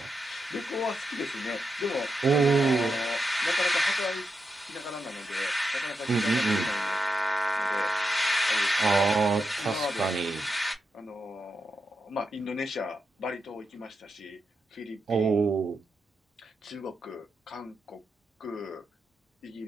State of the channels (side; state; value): both; normal; correlation 0.86